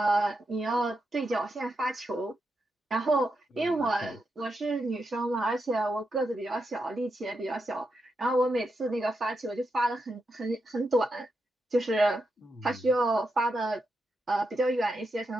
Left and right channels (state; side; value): normal; both; correlation 0.85